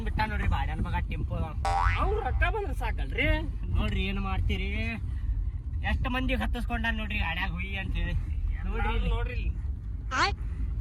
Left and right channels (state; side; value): identical; both; correlation 1.00